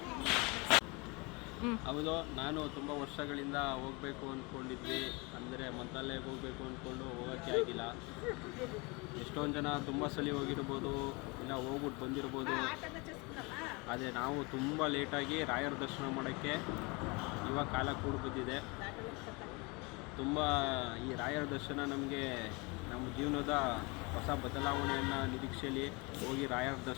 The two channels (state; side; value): quieter; right; 27.9 dB